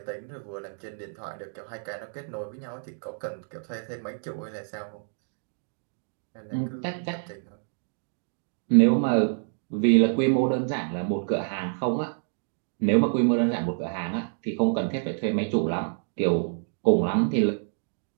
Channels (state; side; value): silent; left; 60 dB below the other